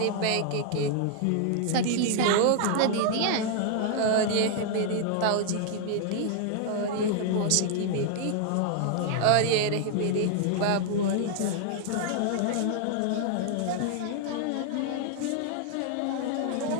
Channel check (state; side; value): different; both; correlation 0.00